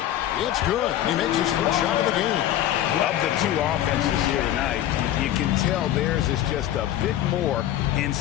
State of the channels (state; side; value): quieter; right; 12.5 dB